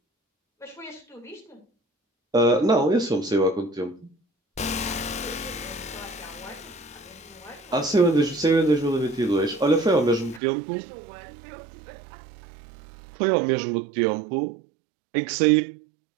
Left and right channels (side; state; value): left; drops out; at 10.4 s